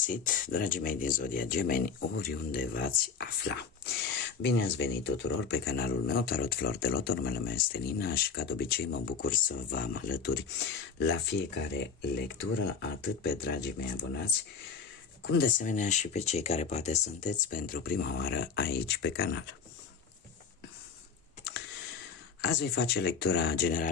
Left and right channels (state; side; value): quieter; right; 5.9 dB